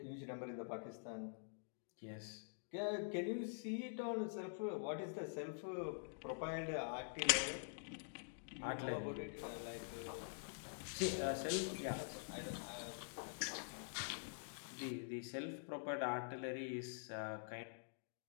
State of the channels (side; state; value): right; silent; digital silence